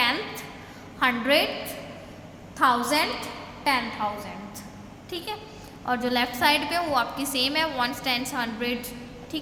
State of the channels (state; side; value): identical; both; correlation 1.00